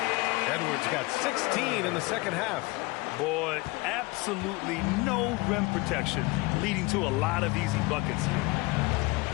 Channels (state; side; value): quieter; right; 23.7 dB